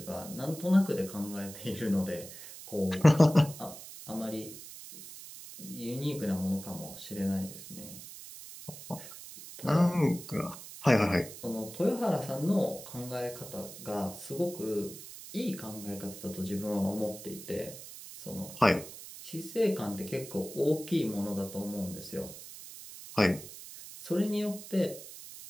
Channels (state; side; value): noise; right; hiss, 14 dB below the sound